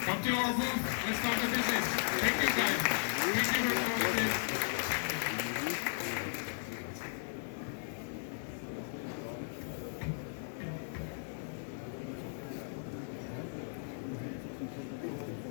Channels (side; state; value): right; silent; digital silence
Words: to our booth, let's start the business. Thank you guys.